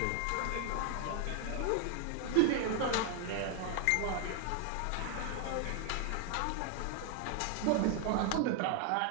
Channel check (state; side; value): different; both; correlation 0.00